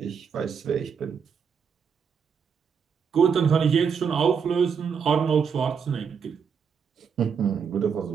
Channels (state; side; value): quieter; left; 6.6 dB